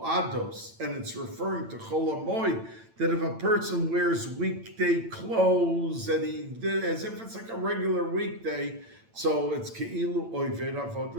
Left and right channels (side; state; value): left; late; 8.9 ms